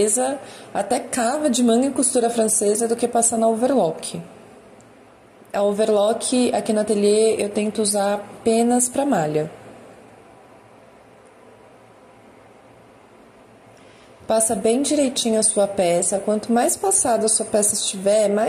até cava de manga em costura francesa, do que passar na overlock. A overlock aqui no ateliê eu tento usar apenas para malha. Passa bem direitinho a sua peça, quanto mais passada a sua peça estiver,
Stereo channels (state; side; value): identical; both; correlation 1.00